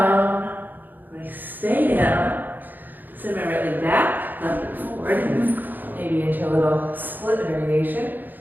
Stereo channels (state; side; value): late; left; 0.087 ms